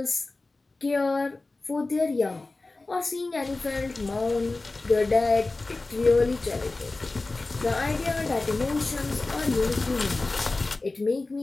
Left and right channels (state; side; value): quieter; right; 3.3 dB